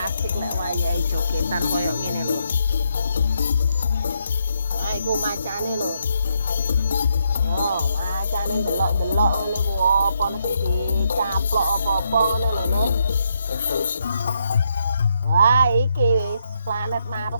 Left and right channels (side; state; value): both; inverted; correlation -0.78